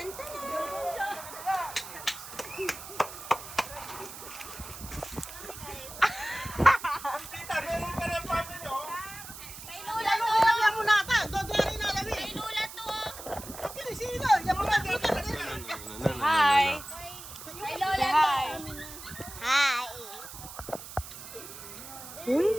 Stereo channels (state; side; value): noise; right; hiss, 12 dB below the sound